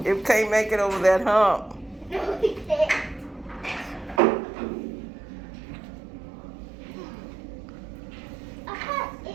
It can't make it over that hump. No, we can't.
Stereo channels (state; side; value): drops out; left; at 4.2 s